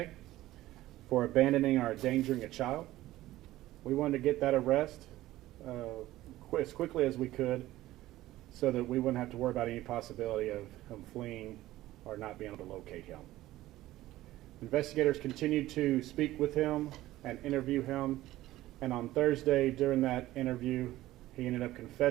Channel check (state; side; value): quieter; left; 15.9 dB